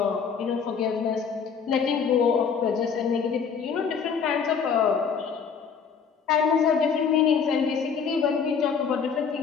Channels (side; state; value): right; quieter; 6.3 dB